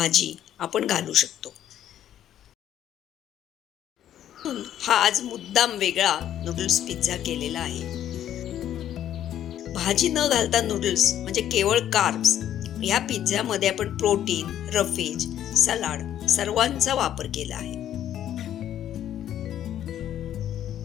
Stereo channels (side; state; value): right; quieter; 11.0 dB